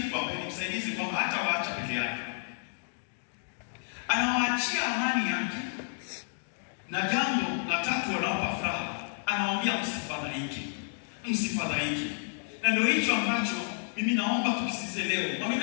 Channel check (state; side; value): silent; right; digital silence